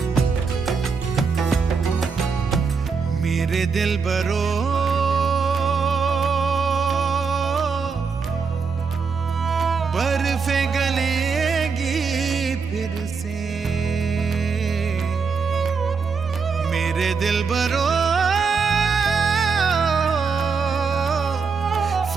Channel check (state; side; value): quieter; left; 5.3 dB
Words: मेरे दिलबरो बर्फे गलेगी फिर से, मेरे दिलबरो